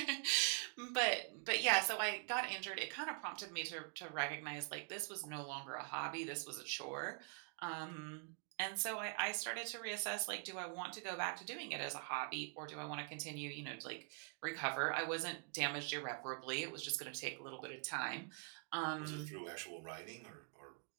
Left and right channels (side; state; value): left; quieter; 39.4 dB